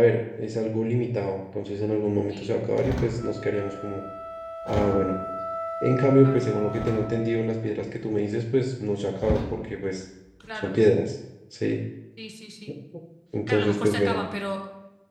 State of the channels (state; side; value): identical; both; correlation 1.00